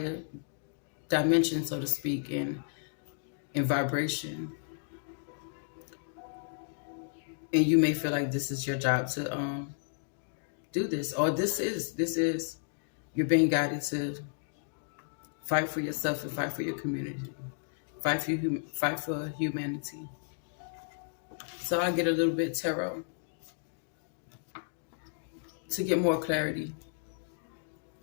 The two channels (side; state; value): right; silent; digital silence